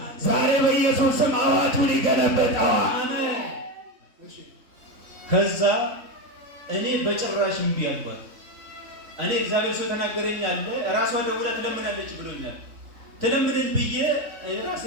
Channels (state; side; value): late; left; 3.0 ms